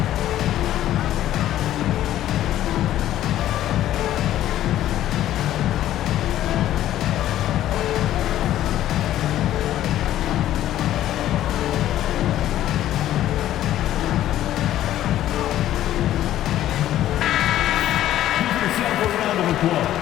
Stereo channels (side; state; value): right; quieter; 12.9 dB